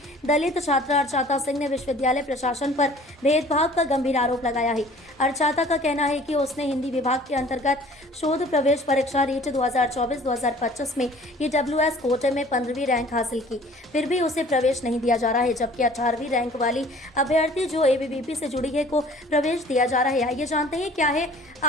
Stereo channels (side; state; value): both; normal; correlation 0.50